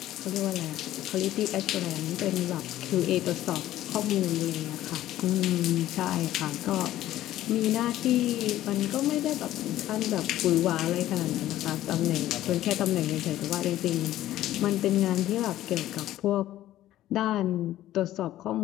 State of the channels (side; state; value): right; quieter; 13.9 dB